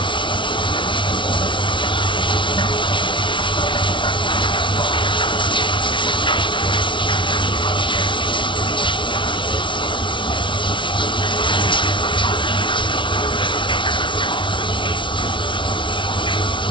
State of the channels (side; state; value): right; late; 0.24 ms